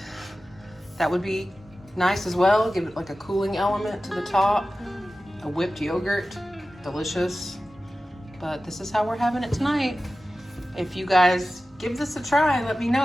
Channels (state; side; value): normal; both; correlation 0.95